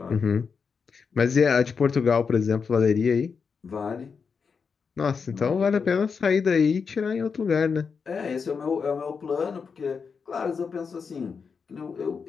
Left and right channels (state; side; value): quieter; right; 5.7 dB